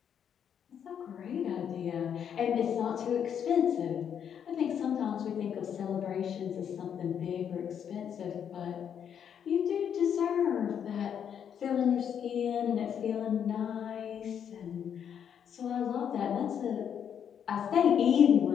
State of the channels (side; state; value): right; quieter; 8.4 dB